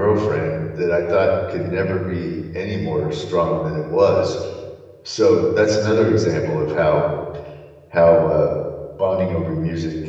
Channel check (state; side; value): identical; both; correlation 1.00